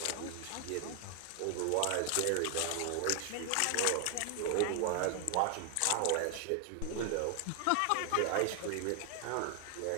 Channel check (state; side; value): different; both; correlation 0.00